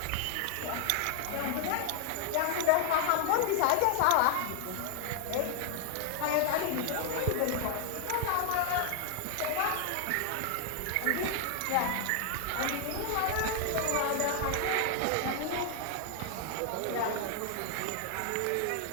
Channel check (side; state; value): both; different; correlation 0.00